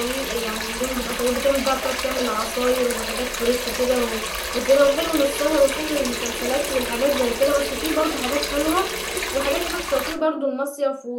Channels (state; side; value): identical; both; correlation 1.00